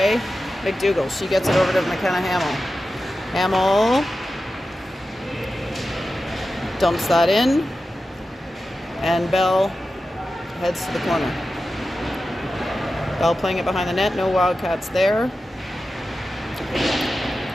McDougall. She gets it over to McKenna Hamill. Hamill dumps that in, and Bell heads to the corner. Bell playing it behind the net, no Wildcats there.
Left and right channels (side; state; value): both; normal; correlation 0.92